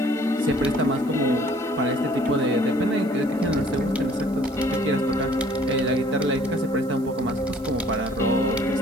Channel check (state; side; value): noise; right; hiss, 25 dB below the sound